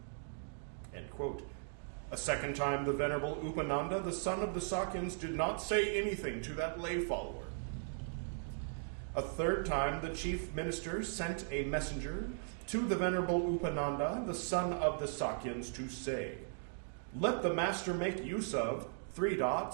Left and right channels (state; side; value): silent; left; digital silence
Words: End quote. A second time, the Venerable Upananda, the son of the Sakyans, did not say anything to that lay follower. A third time, the chief minister sent a messenger to the Venerable Upananda, the son of the Sakyans, to say, let the master make use of